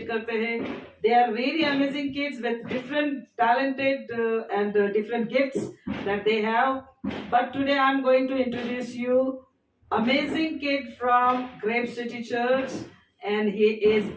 करते हैं. They are really amazing kids with different talented and different gifts that they have. But today I'm going to introduce you amazing kid from Grape City Church, and he is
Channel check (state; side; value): identical; both; correlation 1.00